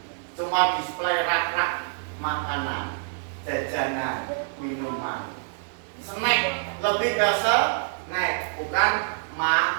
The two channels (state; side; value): silent; left; digital silence